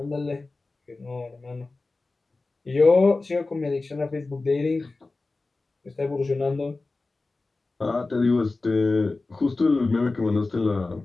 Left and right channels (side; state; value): right; quieter; 3.5 dB